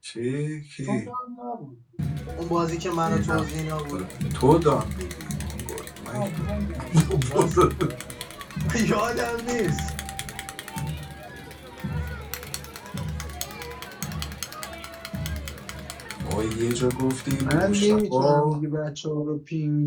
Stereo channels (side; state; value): both; identical; correlation 1.00